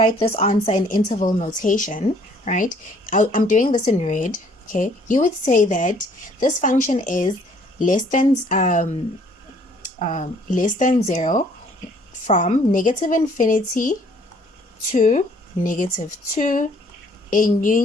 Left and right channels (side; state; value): both; normal; correlation 0.60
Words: this answer in interval notation, right, I'm doing this in red. Okay, you would say that this function is less than 0 from negative infinity to negative 2 in